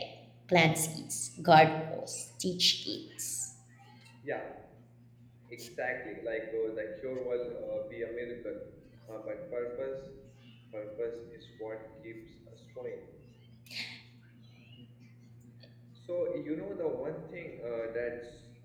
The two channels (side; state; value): both; identical; correlation 1.00